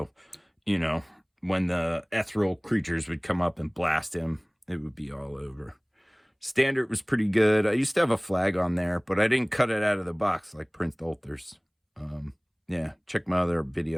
you know, when the ethereal creatures would come up and blast him, it would be all over. Standard was pretty good. I used to have a flag on there, but I didn't cut it out of the box like Prince Ulthar's. Yeah, check my other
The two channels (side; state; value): both; identical; correlation 1.00